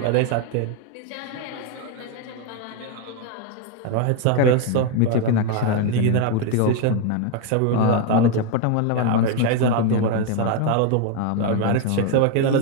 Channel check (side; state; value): both; different; correlation 0.01